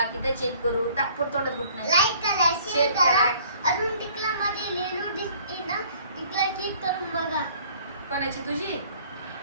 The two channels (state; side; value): inverted; both; correlation -0.56